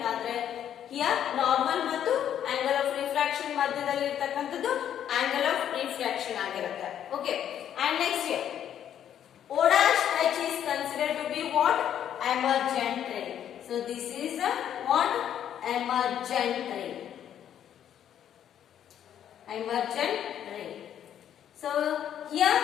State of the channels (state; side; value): quieter; right; 10.0 dB